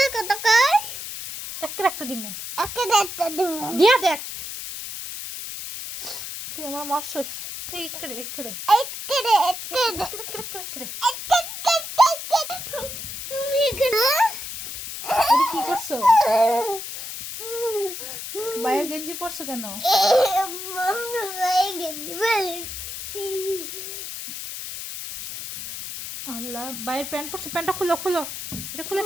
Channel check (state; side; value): noise; left; hiss, 8 dB below the sound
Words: একটা দিমু দিয়া দেখ তুই আমার মারছস একরে কি করছো? বাইরের গেঞ্জি পরছো কেন? আল্লাহ, বাইরের প্যান্ট পরছো, প্যান্টটা খুলো এটা খুলে